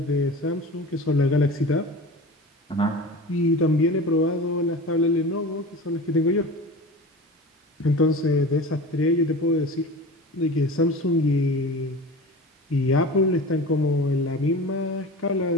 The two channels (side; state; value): both; normal; correlation 0.34